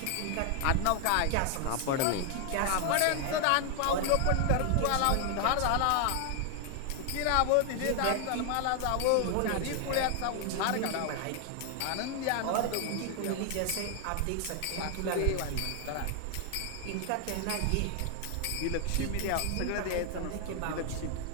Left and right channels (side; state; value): both; different; correlation 0.00